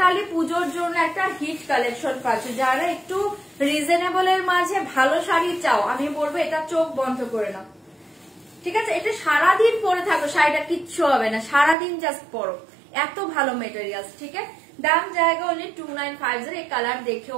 পুজোর জন্য একটা হিট কালেকশন পাচ্ছ, যারা একটু রিজনেবল এর মাঝে ভালো শাড়ি চাও, আমি বলবো এটা চোখ বন্ধ করে নাও। ঠিক আছে, এটা সারাদিন পরে থাকো, শাড়িটা কিচ্ছু হবে না, সারাদিন জাস্ট পরো, এত ভালো মেটেরিয়াল। ঠিক আছে, দাম জায়গা অনলি 2950। এই কালার দেখে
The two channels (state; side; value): drops out; left; at 11.8 s